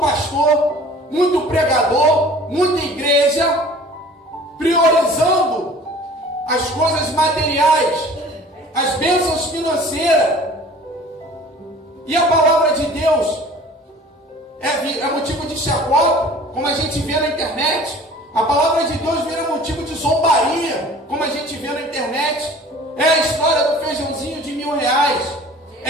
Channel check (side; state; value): both; normal; correlation 0.47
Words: muito pregador, muita igreja priorizando as coisas materiais, as bênçãos financeiras. E a palavra de Deus é motivo de chacota, como a gente vê na internet. A palavra de Deus vira motivo de zombaria, como a gente vê na internet. É a história do feijãozinho de R$1.000.